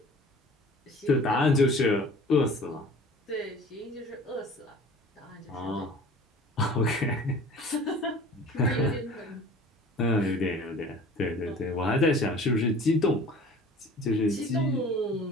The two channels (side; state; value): both; normal; correlation 0.45